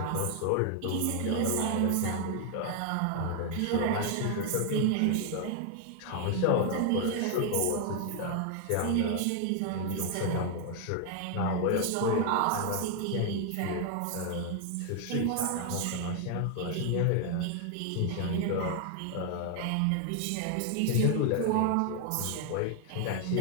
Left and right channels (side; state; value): both; different; correlation 0.00